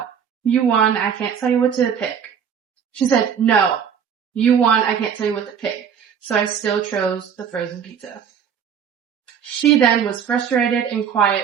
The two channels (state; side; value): quieter; left; 7.7 dB